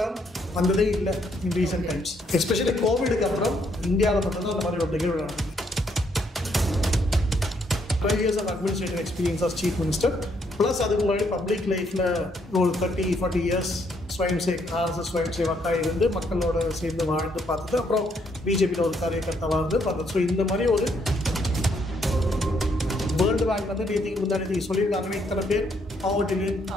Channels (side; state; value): both; normal; correlation 0.72